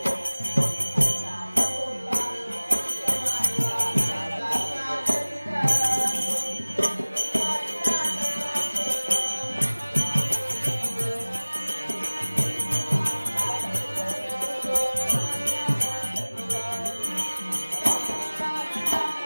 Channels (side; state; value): both; inverted; correlation -1.00